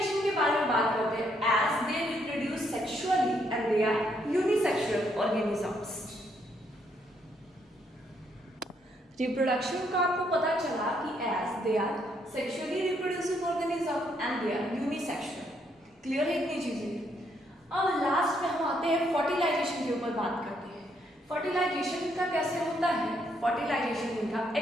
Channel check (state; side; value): normal; both; correlation 0.73